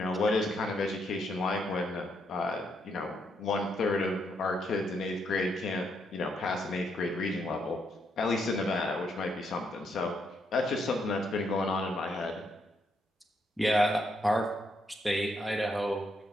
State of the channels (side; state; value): both; normal; correlation 0.76